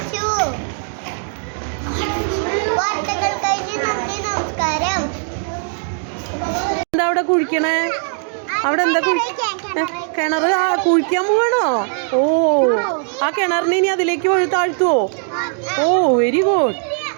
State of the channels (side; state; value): left; silent; 56 dB below the other